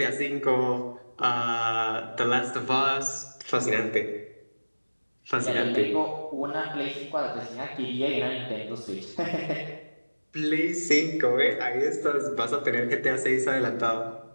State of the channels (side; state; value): both; inverted; correlation -1.00